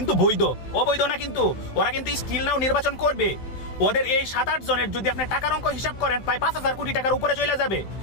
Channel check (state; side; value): late; right; 16 ms